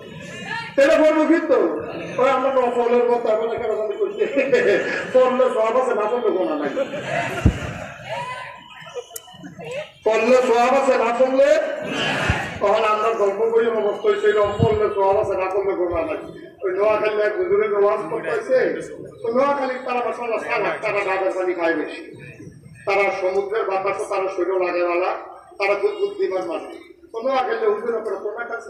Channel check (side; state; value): both; identical; correlation 1.00